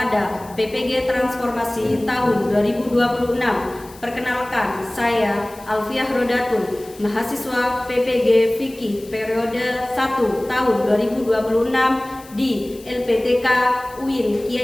PPG Transformasi tahun 2026. Perkenalkan, saya Alfiah Rodatun, mahasiswa PPG Fikih periode 1 tahun 2026 di LPTK UIN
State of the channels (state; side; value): noise; left; hiss, 22 dB below the sound